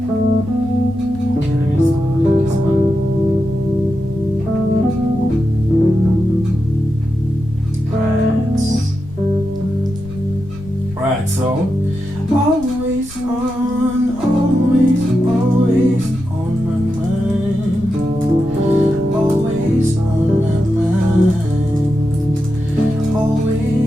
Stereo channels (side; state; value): left; noise; rumble, 16 dB below the sound